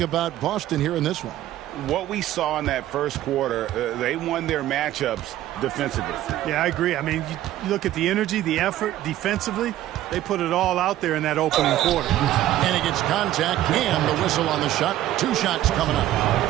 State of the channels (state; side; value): quieter; left; 13.6 dB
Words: Boston here in this one? what we saw in that first quarter, they won their matchups defensively. Yeah, I agree. I mean, you look at the energy, the effort defensively, they put it all out there in that opening quarter. And he gets contact and the whistle on the shot. 2 shots coming